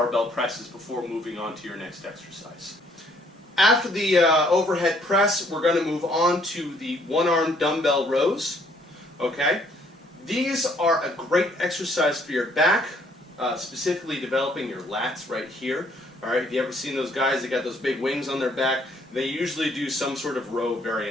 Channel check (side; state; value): both; normal; correlation 0.64